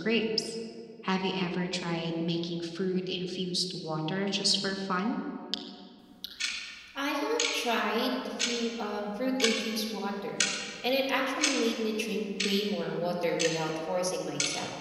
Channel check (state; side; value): identical; both; correlation 1.00